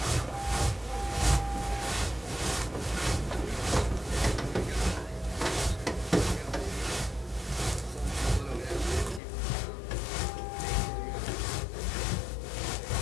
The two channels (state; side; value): drops out; right; at 9.2 s